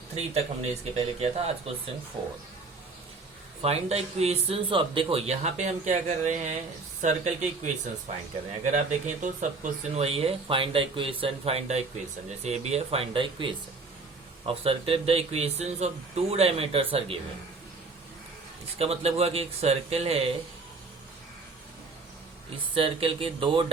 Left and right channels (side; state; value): left; quieter; 3.9 dB